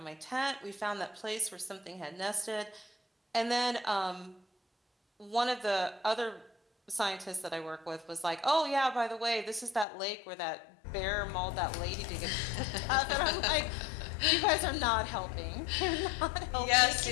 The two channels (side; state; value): right; drops out; at 9.9 s